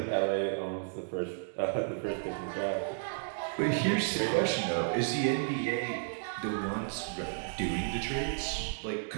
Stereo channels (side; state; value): left; silent; digital silence